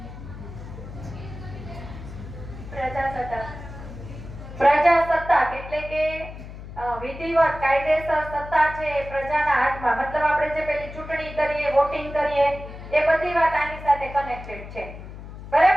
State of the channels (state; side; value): noise; left; hum, 13 dB below the sound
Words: પ્રજાસત્તાક એટલે કે વિધિવત કાયદેસર સત્તા છે એ પ્રજાના હાથમાં. મતલબ આપણે જે પેલી ચૂંટણી કરીએ, વોટિંગ કરીએ, એ બધી વાત આની સાથે કનેક્ટેડ છે.